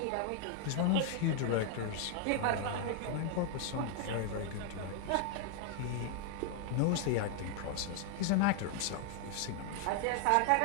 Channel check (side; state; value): both; different; correlation 0.00